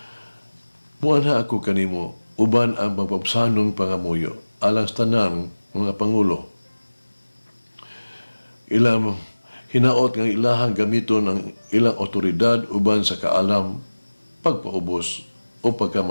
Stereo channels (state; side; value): inverted; both; correlation -1.00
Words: Muana ako kanimo, uban ang pagpapsanong pangamuyo, alang sa tanang mga pangulo. Ilang hinaot ng ilahang gamiton ng ilang otoridad uban sa kaalam, pagpaubos o